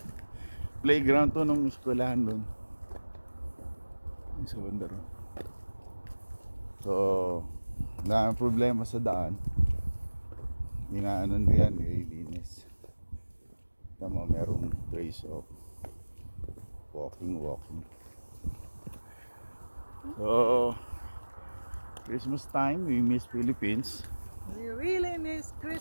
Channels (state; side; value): inverted; both; correlation -1.00